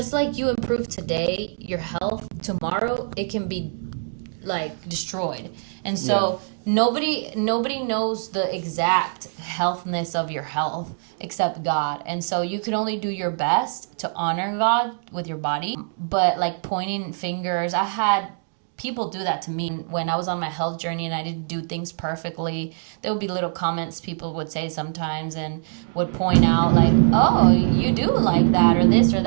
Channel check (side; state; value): left; silent; digital silence